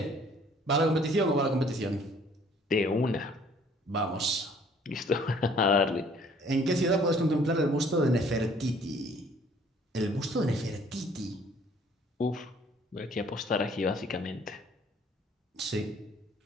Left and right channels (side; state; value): both; normal; correlation 0.58